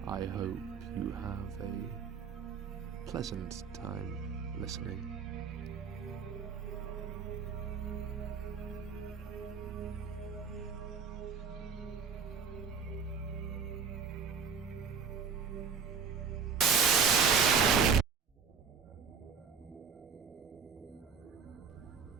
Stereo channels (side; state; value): left; quieter; 6.1 dB